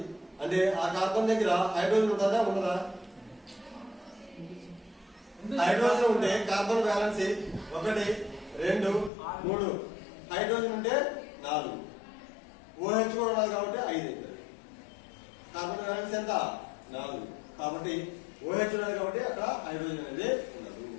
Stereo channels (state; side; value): drops out; right; at 9.1 s